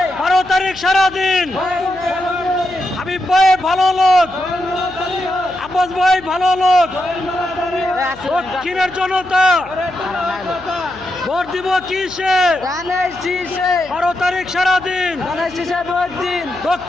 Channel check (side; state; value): left; noise; hum, 21 dB below the sound